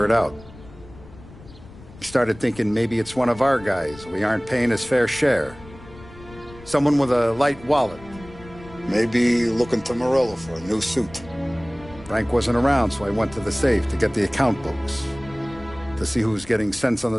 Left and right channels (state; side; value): noise; left; rumble, 19 dB below the sound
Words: it out. I started thinking maybe it's one of our guys. We aren't paying his fair share. Someone with a light wallet. Maybe looking to Morello for a new suit. Frank wasn't around, so I went to the safe to get the account books. To see who's getting cents on the